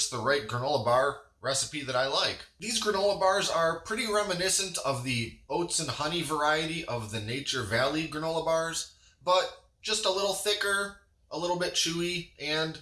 the right granola bar recipe that I like. These granola bars are pretty reminiscent of the oats and honey variety of the Nature Valley granola bars, but just a little thicker, a little bit chewy, and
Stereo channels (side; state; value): both; identical; correlation 1.00